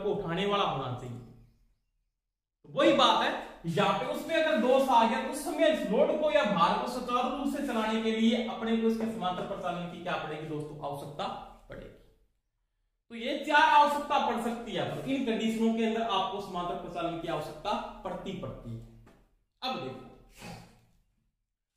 को उठाने वाला होना चाहिए। तो वही बात है यहाँ पे, उसमें अगर दोष आ गया तो उस समय इस लोड को या भार को सुचारू रूप से चलाने के लिए अपने को इसके समांतर प्रचालन की क्या पड़ेगी दोस्तों, आवश्यकता पड़ेगी। तो ये 4 आवश्यकता पड़ सकती है, तो इन कंडीशनों के अंदर आपको समांतर प्रचालन की आवश्यकता पड़ती है। अब देखो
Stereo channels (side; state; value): both; identical; correlation 1.00